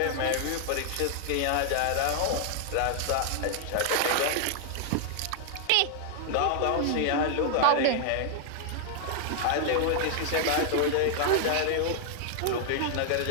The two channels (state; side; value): different; both; correlation 0.00